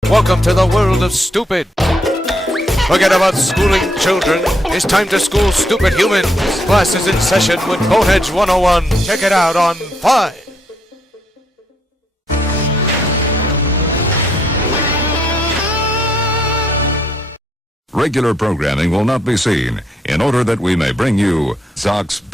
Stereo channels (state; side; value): normal; both; correlation 0.74